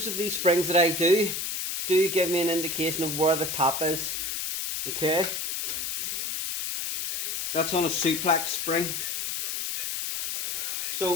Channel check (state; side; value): noise; left; hiss, 1 dB below the sound